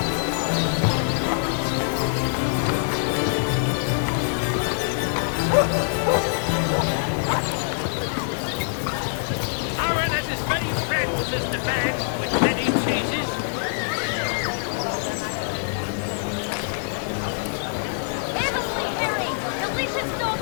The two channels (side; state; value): right; silent; digital silence